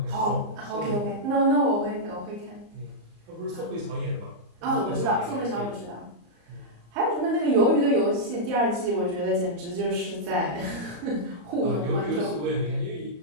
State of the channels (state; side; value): late; left; 34 ms